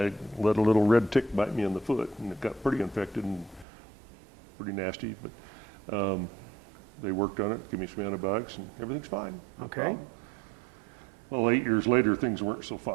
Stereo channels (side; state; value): left; drops out; at 3.7 s